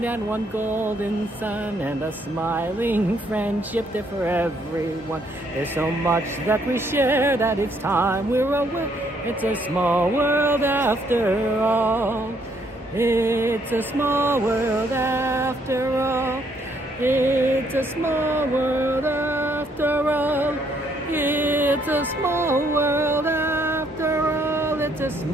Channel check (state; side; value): normal; both; correlation 0.69